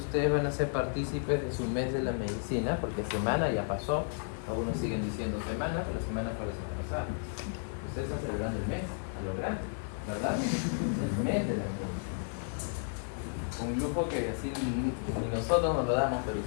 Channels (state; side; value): silent; right; 56 dB below the other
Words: van a ser partícipes de su mes de la medicina, porque semana ya pasó. Algunos siguen diciendo semana, pero semana fue la semana pasada. Ustedes están celebrando el mes, a lo grande, ¿verdad? El mes de la medicina. Un lujo que así ni nosotros nos lo damos, pero